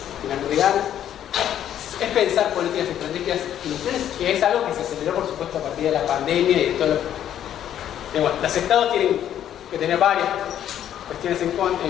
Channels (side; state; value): right; quieter; 10.6 dB